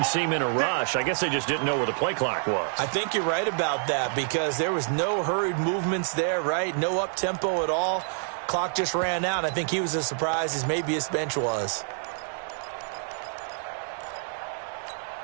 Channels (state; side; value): silent; left; 60 dB below the other